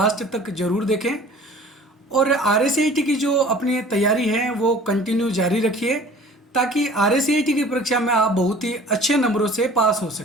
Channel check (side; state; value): both; normal; correlation 0.47